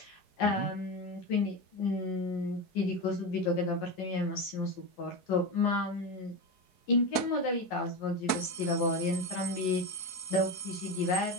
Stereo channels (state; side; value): late; right; 4.6 ms